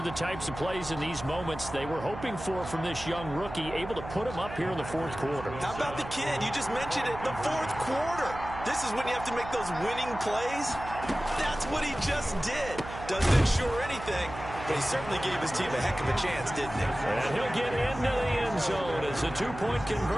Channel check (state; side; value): noise; right; hum, 11 dB below the sound